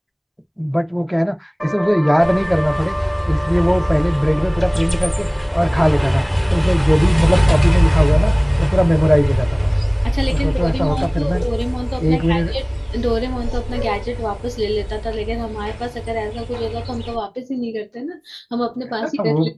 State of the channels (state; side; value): identical; both; correlation 1.00